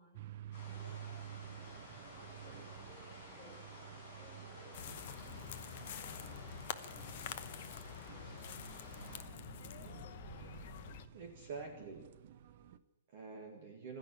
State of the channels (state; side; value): inverted; both; correlation -0.36